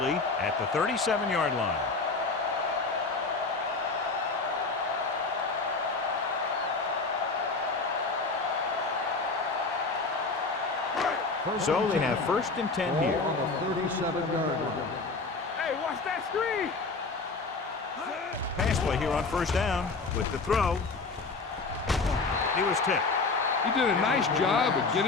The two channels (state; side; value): quieter; right; 3.9 dB